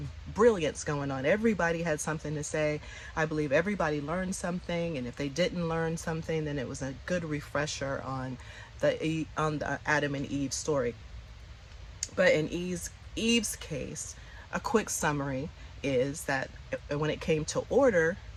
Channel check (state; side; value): identical; both; correlation 1.00